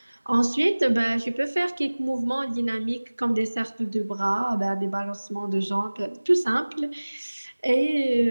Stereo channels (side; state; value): both; inverted; correlation -1.00